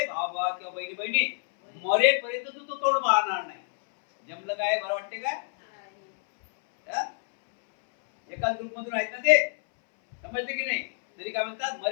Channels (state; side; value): silent; right; 60 dB below the other